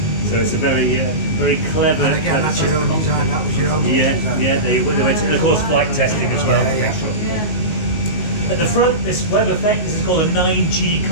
So it's a very, very clever. And again, that's your own design. That was your own design. They went to, and of course, flight testing as well to make sure. At the front, this web effect, this is called a 9G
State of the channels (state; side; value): late; right; 19 ms